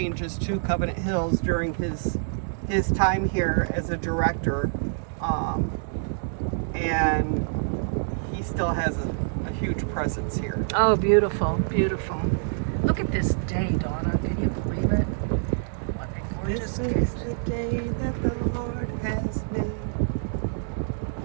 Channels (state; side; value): silent; left; 61 dB below the other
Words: to Covenant Hills during his time here as a director. And he still has a huge presence here. Oh, beautiful, beautiful. Look at this day, Donna. Can you believe it? What a gorgeous day. This is the day that the Lord has made.